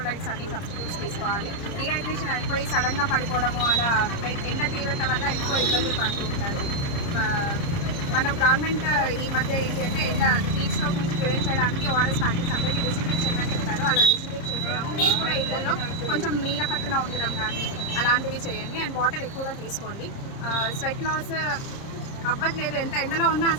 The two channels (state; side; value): late; right; 30 ms